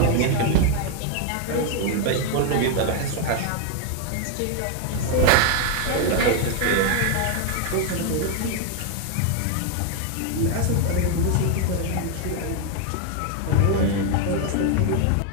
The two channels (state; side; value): different; both; correlation 0.01